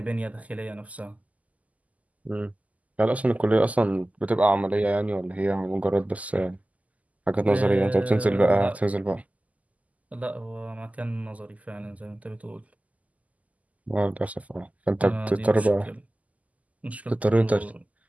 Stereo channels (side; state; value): left; late; 0.074 ms